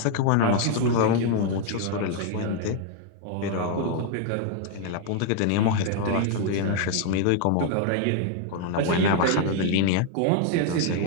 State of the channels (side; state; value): both; different; correlation 0.00